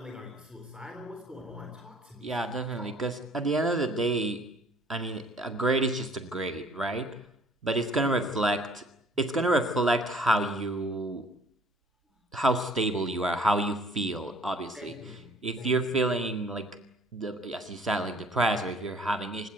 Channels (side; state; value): both; normal; correlation 0.56